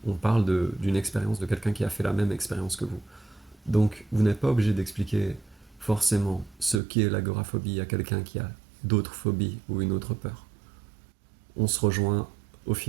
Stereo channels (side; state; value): left; drops out; at 6.8 s